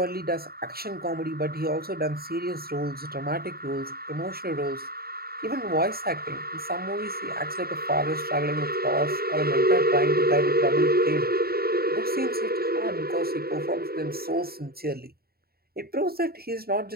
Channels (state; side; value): late; left; 0.45 ms